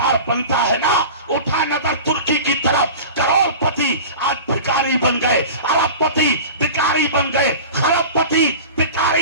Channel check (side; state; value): both; inverted; correlation -0.34